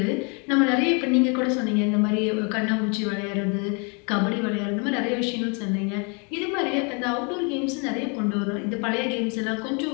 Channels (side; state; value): right; quieter; 34.4 dB